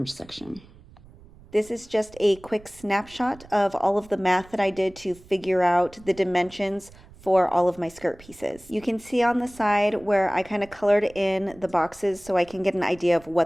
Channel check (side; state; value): right; noise; rumble, 23 dB below the sound